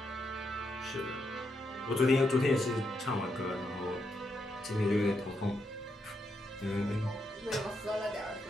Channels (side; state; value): both; normal; correlation 0.81